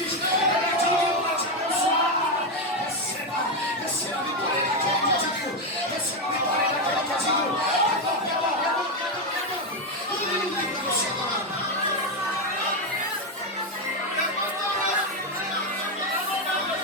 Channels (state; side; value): normal; both; correlation 0.07